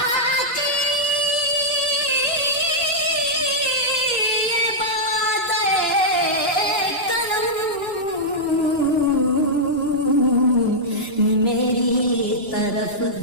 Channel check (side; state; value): right; late; 2.9 ms